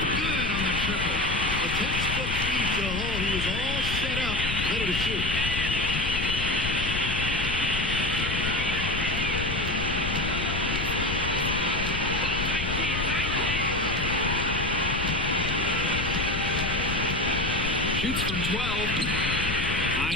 Good on the triple. A textbook feed to Hull. He was all set up, ready to shoot. Shoots from 12.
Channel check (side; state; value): left; noise; rumble, 3 dB below the sound